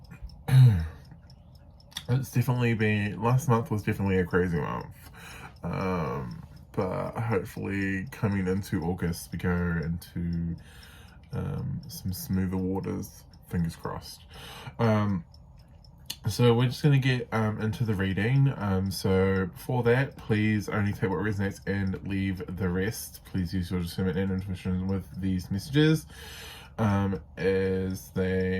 It's definitely been, last month was definitely a crazy month. But hopefully coming into August we go into some smoother waters. Fingers crossed. So we're just going to get into the reading. So for that, please only take what resonates and leave the rest. Please use your discernment and intuition with these messages, as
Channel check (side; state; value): both; identical; correlation 1.00